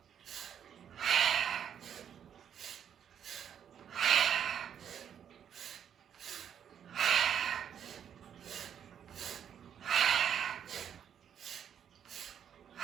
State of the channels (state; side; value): quieter; left; 8.8 dB